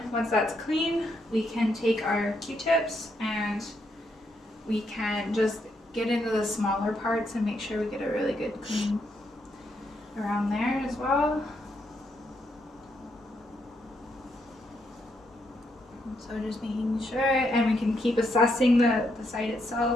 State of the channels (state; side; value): normal; both; correlation 0.78